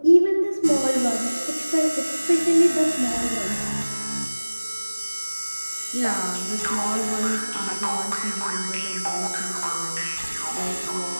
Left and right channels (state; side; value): inverted; both; correlation -1.00